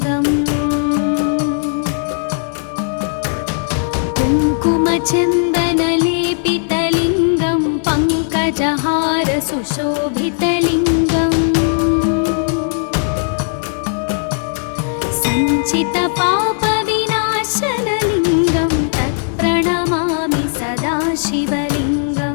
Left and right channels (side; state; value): right; silent; 65 dB below the other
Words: कुङ्कुमचन्दनलेपितलिङ्गं पङ्कजहारसुशोभितलिङ्गम् सञ्चितपापविनाशनलिङ्गं तत्प्रणमामि सदा